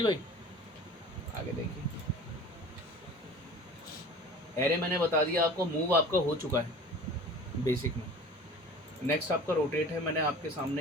भाई। आगे देखिए, एरे मैंने बता दिया आपको, मूव आपका हो चुका है बेसिक में। नेक्स्ट आपका रोटेट है, मैंने आपके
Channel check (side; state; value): both; normal; correlation 0.41